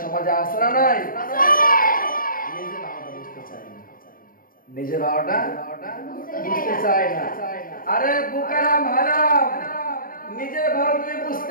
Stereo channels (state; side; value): late; right; 0.41 ms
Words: সমাজে আছে না নাই? নিজের ভাওটা বুঝতে চায় না। আরে বুকারাম হারাম, নিজের ভাও তুমি